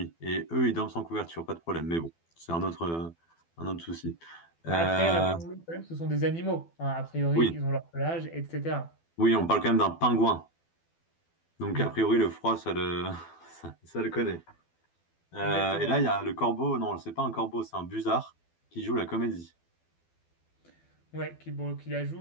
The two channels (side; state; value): right; late; 12 ms